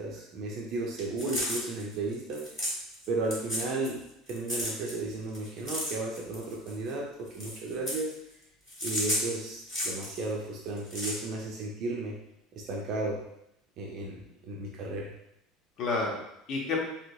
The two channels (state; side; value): normal; both; correlation 0.34